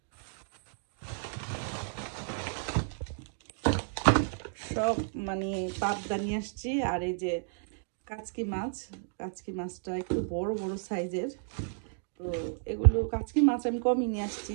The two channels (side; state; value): left; silent; digital silence